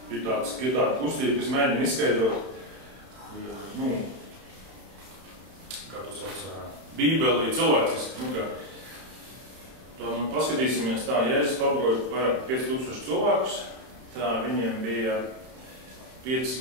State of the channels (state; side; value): late; left; 31 ms